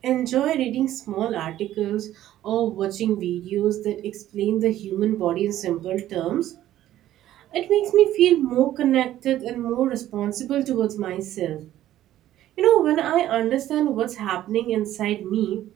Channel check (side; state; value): left; quieter; 13.2 dB